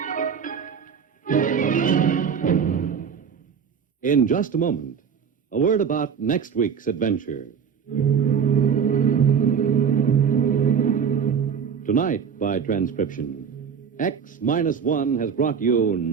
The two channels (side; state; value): left; quieter; 6.9 dB